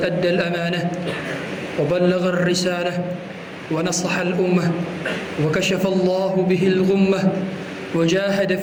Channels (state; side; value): identical; both; correlation 1.00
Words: أدى الأمانة وبلغ الرسالة ونصح الأمة وكشف الله به الغمة وجاهد